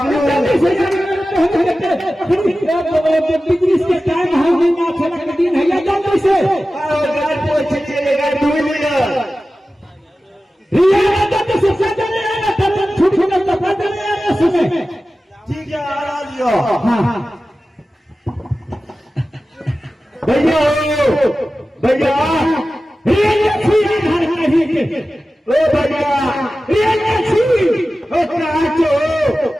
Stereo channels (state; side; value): normal; both; correlation 0.95